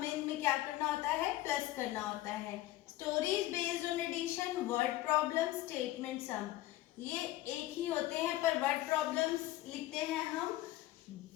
इनमें क्या करना होता है? प्लस करना होता है। Stories based on addition, word problem, statement sum, ये एक ही होते हैं, पर वर्ड प्रॉब्लम्स लिखते हैं हम,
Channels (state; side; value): quieter; right; 16.0 dB